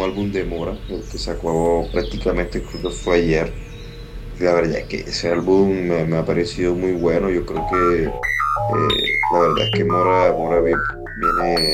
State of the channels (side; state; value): both; identical; correlation 1.00